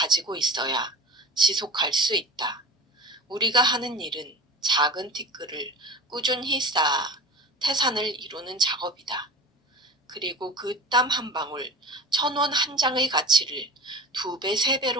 있어야 지속할 수 있다. 우리가 하는 일은 작은 티끌을 꾸준히 쌓아 태산을 이루는 작업이다. 그리고 그 땀 한 방울, 1,000원 한 장의 가치를 2배,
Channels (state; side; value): normal; both; correlation 0.35